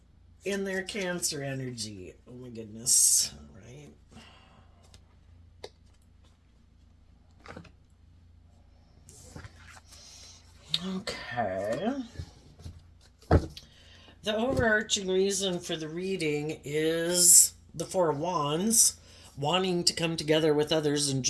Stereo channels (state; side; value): identical; both; correlation 1.00